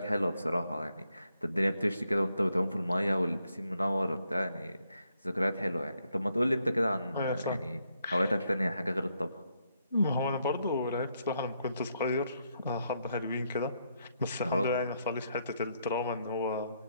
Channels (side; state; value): both; inverted; correlation -0.76